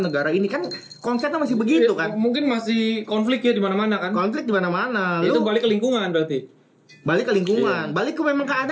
negara ini kan, konsepnya masih begitu kan. Mungkin masih konflik ya di mana-mana kan. Konflik di mana-mana. Itu balik ke lingkungan berarti. Balik ke lingkungan, balik ke memang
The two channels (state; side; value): identical; both; correlation 1.00